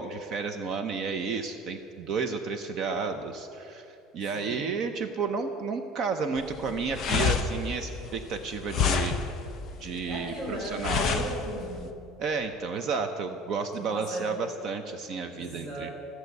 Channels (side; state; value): both; normal; correlation 0.42